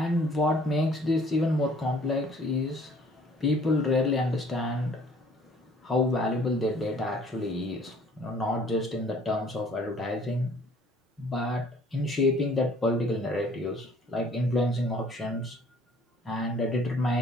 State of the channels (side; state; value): both; normal; correlation 0.56